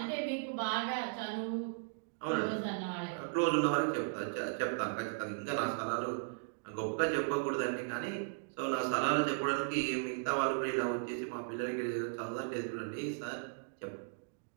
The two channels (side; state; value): left; silent; digital silence